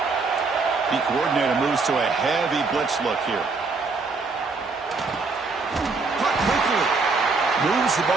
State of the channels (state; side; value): quieter; left; 4.2 dB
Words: The coordinator moves to a heavy blitz look here. Cut quickly. Moves the